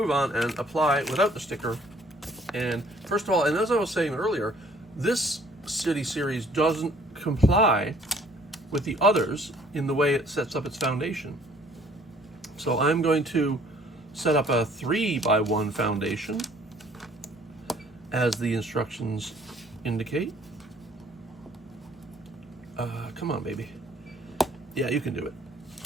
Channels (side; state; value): both; normal; correlation 0.58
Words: on and apply without the sticker. And first of all, and as I was saying earlier, this city series doesn't comply with the others in the way it sets up its foundation. So I'm going to set up a 3x1 foundation as the instructions indicate. Come on, baby. Yeah, you can do it.